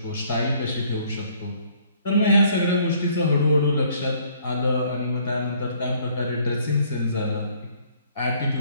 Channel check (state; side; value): inverted; both; correlation -0.62